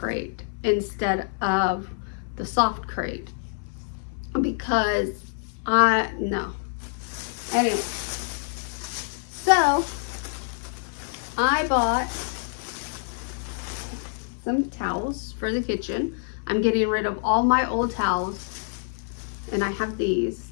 instead of the soft crate because no. Anyway, so I bought some towels for the kitchen. I'm getting rid of all my old towels, and I have these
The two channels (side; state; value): right; silent; 57 dB below the other